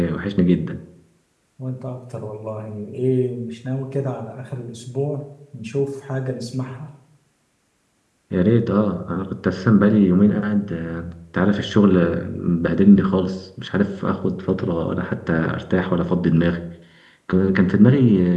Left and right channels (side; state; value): both; identical; correlation 1.00